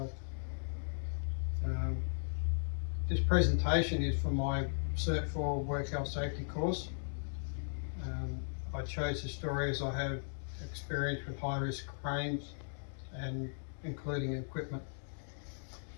This presentation is for my Cert 4 Work Health Safety course. I chose the story as I have experience with high-risk cranes and including equipment.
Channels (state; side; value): silent; right; digital silence